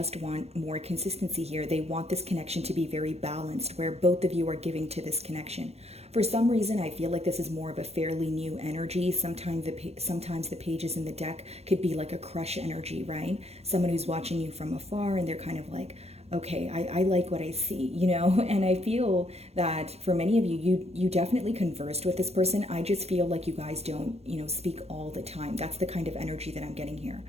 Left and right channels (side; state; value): left; late; 0.30 ms